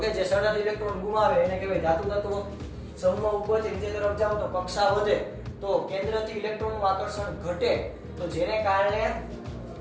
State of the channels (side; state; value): both; identical; correlation 1.00